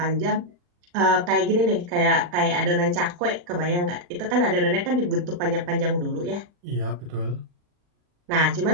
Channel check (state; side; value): late; left; 40 ms